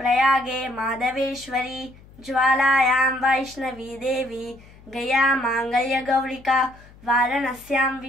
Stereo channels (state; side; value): noise; left; hum, 23 dB below the sound